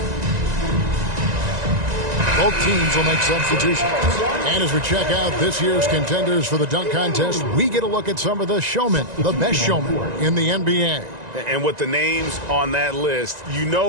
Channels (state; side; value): late; left; 1.9 ms